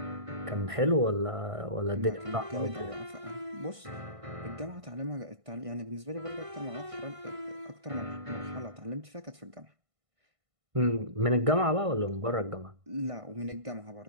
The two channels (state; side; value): late; left; 1.5 ms